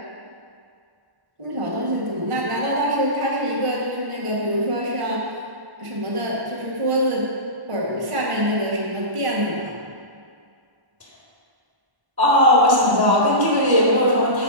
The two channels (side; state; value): left; late; 1.1 ms